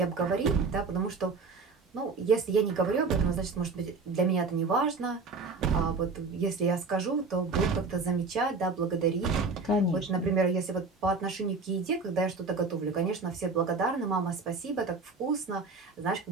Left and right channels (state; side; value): quieter; left; 4.2 dB